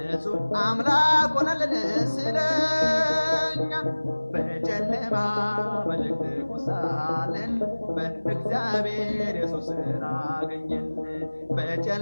አምላክ ሆነልን ስለኛ። በጨለማ በድቅድቁ ሳለን በእግዚአብሔር ኢየሱስን አገኘን።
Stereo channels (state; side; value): inverted; both; correlation -1.00